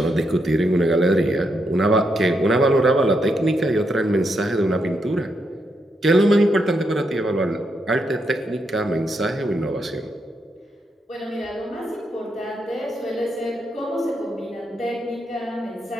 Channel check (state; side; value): normal; both; correlation 0.80